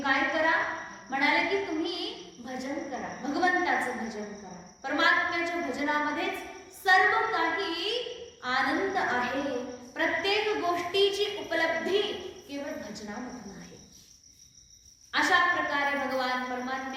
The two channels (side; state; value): both; identical; correlation 1.00